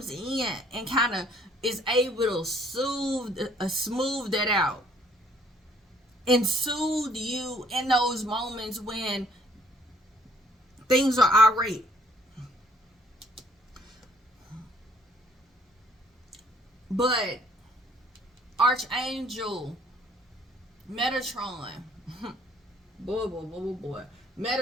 in and kind of is able to smooth that out and soothe you in those moments when things are irate. But Archangel Metatron, boy.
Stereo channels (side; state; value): both; normal; correlation 0.62